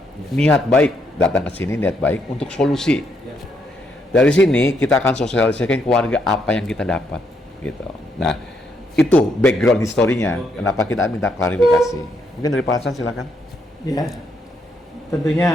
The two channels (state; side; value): normal; both; correlation 0.75